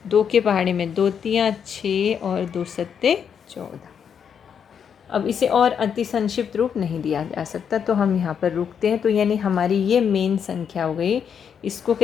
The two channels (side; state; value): right; quieter; 7.5 dB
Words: 2 के पहाड़े में 2 तियाँ 6 और 2 सत्ते 14। अब इसे और अति संक्षिप्त रूप नहीं दिया जा सकता, तो हम यहाँ पर रुकते हैं। तो यानी हमारी ये मेन संख्या हो गई। इसको